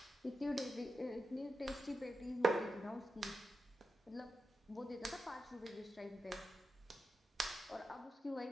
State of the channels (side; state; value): both; normal; correlation 0.88